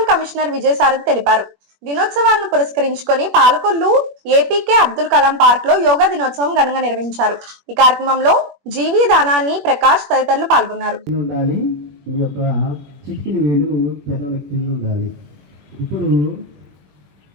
కమిషనర్ విజయసారథి తెలిపారు. దినోత్సవాలను పురస్కరించుకొని పాలకొల్లు ఏపీకే అబ్దుల్ కలాం పార్క్ లో యోగా దినోత్సవం ఘనంగా నిర్వహించారు. ఈ కార్యక్రమంలో జీవి దానాన్ని ప్రకాష్ తదితరులు పాల్గొన్నారు. చిటికిన వేలు పెదవుల కింద ఉండాలి. ఇప్పుడు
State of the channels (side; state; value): left; late; 21 ms